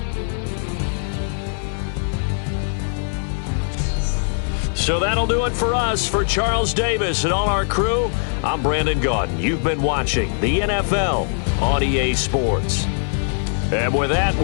So that'll do it for us. For Charles Davis and all our crew, I'm Brandon Gaudin. You've been watching the NFL on EA Sports. And with that,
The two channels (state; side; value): silent; right; 58 dB below the other